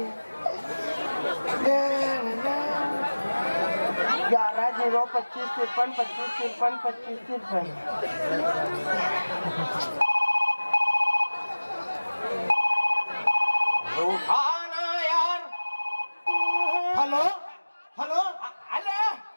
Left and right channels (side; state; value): both; inverted; correlation -1.00